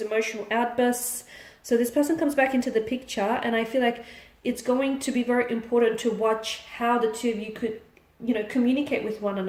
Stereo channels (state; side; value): identical; both; correlation 1.00